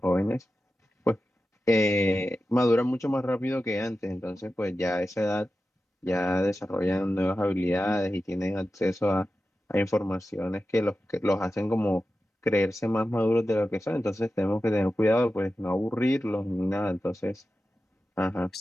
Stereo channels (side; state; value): both; normal; correlation 0.93